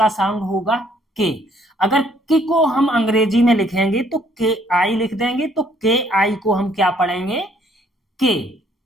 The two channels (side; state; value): both; normal; correlation 0.64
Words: साउंड होगा के। अगर के को हम अंग्रेजी में लिखेंगे तो के आई लिख देंगे, तो के आई को हम क्या पढ़ेंगे? के।